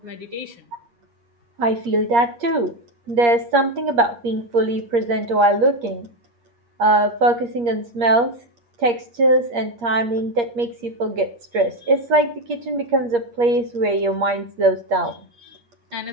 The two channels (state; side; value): late; left; 8.5 ms